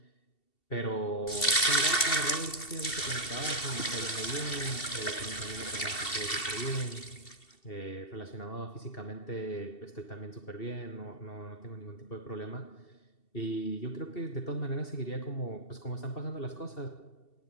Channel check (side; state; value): right; late; 2.7 ms